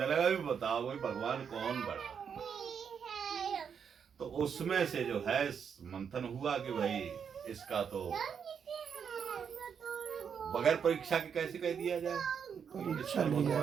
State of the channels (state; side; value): quieter; left; 7.1 dB